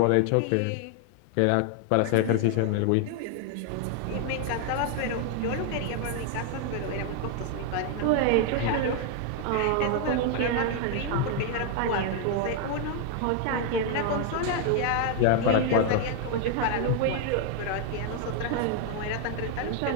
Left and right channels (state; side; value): different; both; correlation 0.00